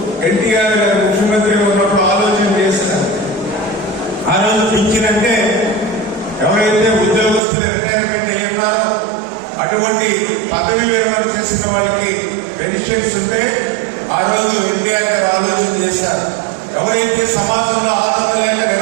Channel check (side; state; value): left; drops out; at 7.4 s